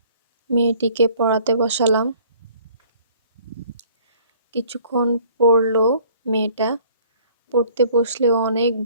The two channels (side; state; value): both; inverted; correlation -0.55